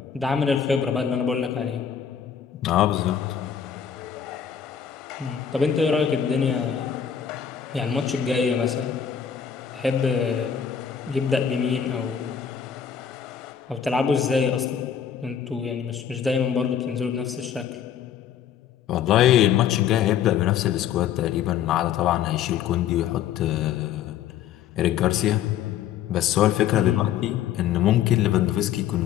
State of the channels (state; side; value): quieter; right; 8.6 dB